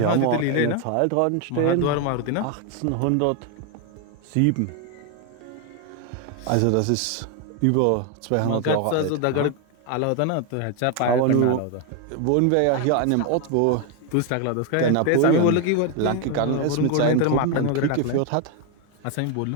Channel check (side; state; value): both; different; correlation 0.01